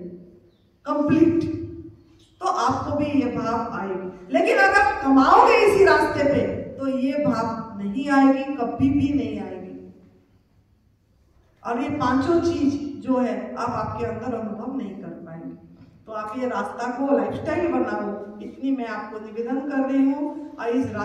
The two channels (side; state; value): both; identical; correlation 1.00